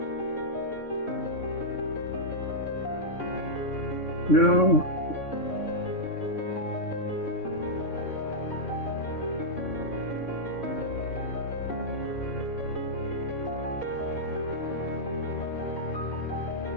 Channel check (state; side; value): late; right; 3.6 ms